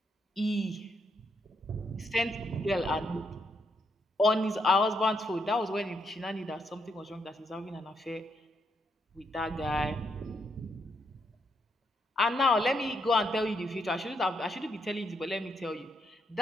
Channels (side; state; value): both; normal; correlation 0.78